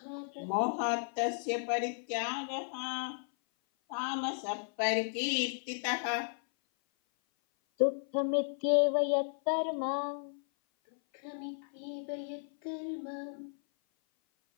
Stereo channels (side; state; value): right; silent; 55 dB below the other